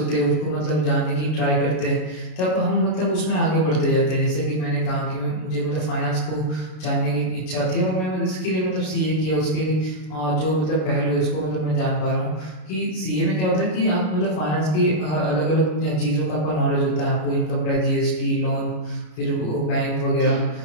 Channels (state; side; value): late; right; 33 ms